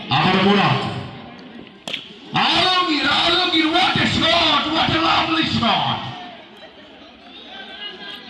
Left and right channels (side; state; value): both; identical; correlation 1.00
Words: আবার Murad, Alamgir, Alamgir, what a shot, what a lovely shot.